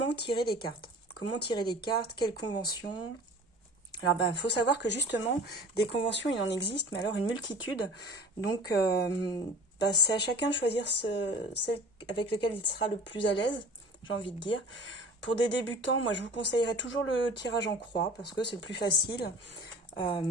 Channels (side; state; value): both; normal; correlation 0.42